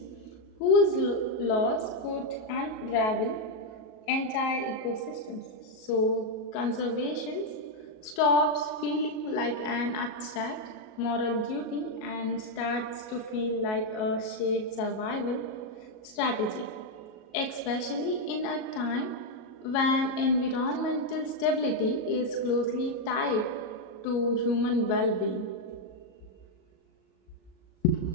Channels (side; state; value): right; late; 37 ms